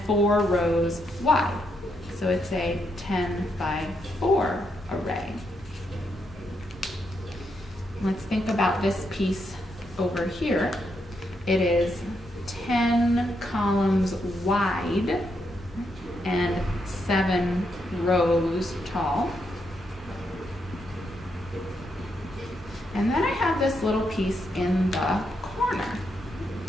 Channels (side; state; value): both; normal; correlation 0.80